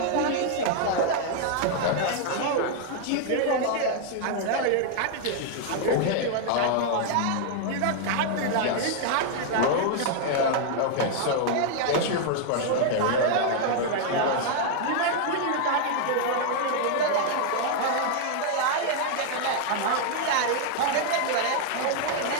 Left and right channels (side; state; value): both; different; correlation 0.00